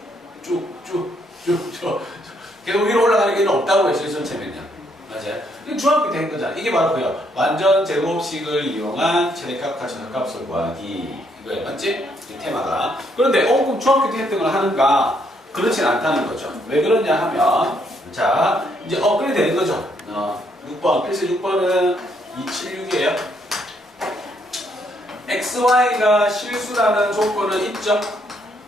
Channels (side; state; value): both; normal; correlation 0.72